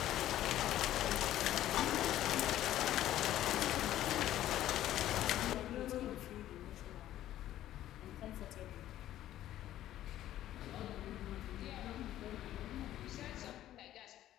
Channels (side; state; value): right; quieter; 13.0 dB